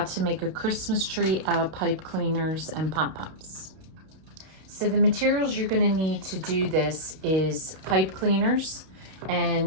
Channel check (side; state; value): left; late; 32 ms